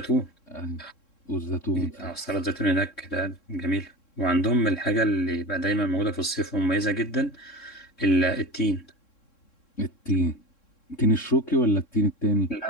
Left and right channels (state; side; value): late; right; 3.7 ms